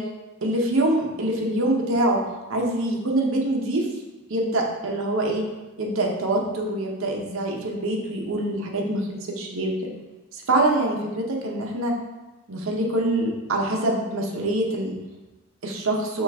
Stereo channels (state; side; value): normal; both; correlation 0.21